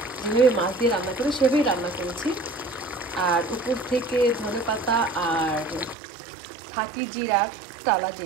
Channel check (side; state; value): left; drops out; at 6.0 s